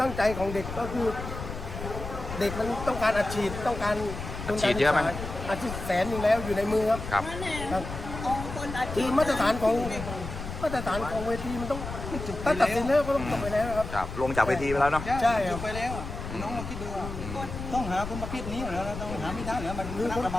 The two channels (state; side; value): noise; left; rumble, 8 dB below the sound